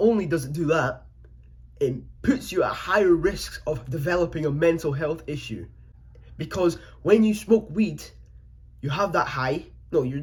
only does it do that, it puts you at higher risks of developing a mental health issue. Because when you smoke weed, you have that high. No, you're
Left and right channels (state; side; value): identical; both; correlation 1.00